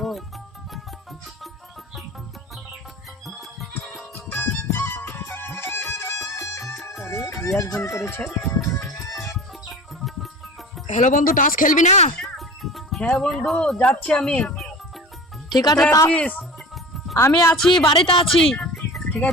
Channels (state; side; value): normal; both; correlation 0.36